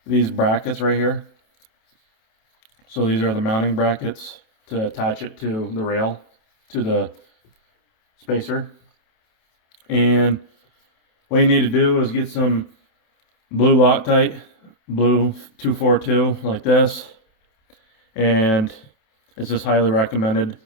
these brackets right here. So these are the mounting brackets to attach it to the rail, to the spacer. And what you need to do is get some blue Loctite, blue 242 like this, and it's just highly recommended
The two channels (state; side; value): late; right; 28 ms